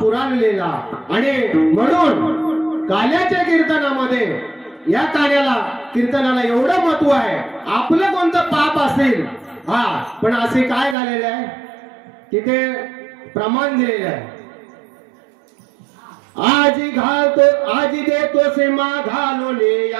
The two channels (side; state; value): left; drops out; at 11.0 s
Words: लिहिला. आणि म्हणून काल्याच्या कीर्तनामध्ये या कार्याला कीर्तनाला एवढं महत्व आहे. आपलं कोणतं पाप असेल पण असे काय झालेले आहे तिथे प्रमाण दिलेलं आहे. आज घालतो आज देतो सीमा घालून